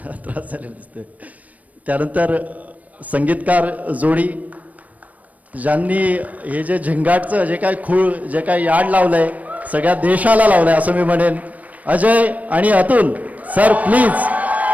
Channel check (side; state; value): left; late; 0.071 ms